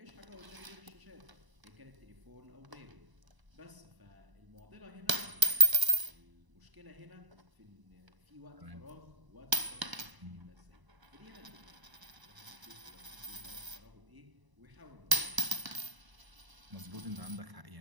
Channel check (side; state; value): left; late; 1.0 ms